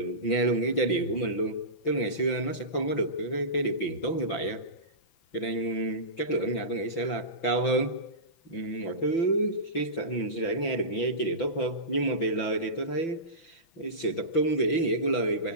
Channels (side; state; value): right; late; 6.0 ms